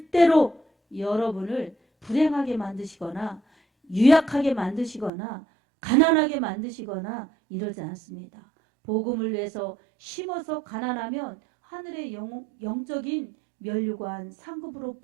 여러분을 불행하게 만드시거나 유약하게 만드시거나 가난하게 만드시거나 이러지 않습니다. 복음을 위해서 심어서 가난하면 하늘의 영적인 면류관 상급으로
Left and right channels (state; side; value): drops out; left; at 5.1 s